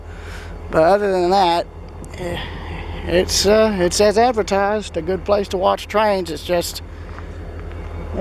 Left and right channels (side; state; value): both; identical; correlation 1.00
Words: other than that, it's as advertised, a good place to watch trains. It's just